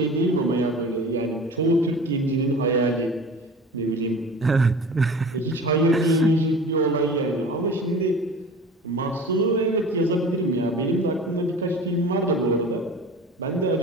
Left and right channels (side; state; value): both; normal; correlation 0.39